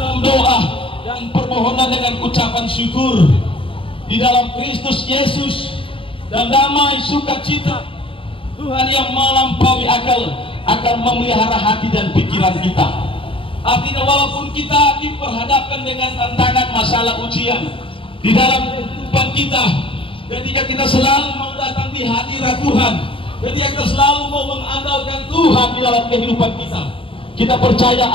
doa dan permohonan dengan ucapan syukur di dalam Kristus Yesus, dan damai sukacita Tuhan yang melampaui akal akan memelihara hati dan pikiran kita. Artinya walaupun kita diperhadapkan dengan tantangan, masalah, ujian di dalam kehidupan kita, ketika kita selalu mau datang di hadirat Tuhan, ketika kita selalu mau mengandalkan Tuhan di dalam kehidupan kita, kita percaya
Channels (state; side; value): late; right; 0.26 ms